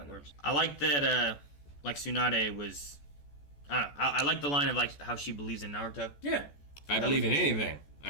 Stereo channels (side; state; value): right; late; 14 ms